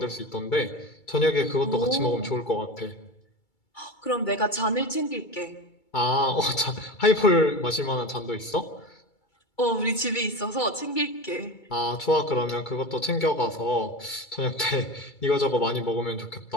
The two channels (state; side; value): late; right; 2.3 ms